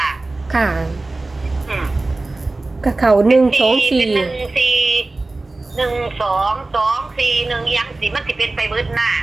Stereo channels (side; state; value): left; quieter; 3.1 dB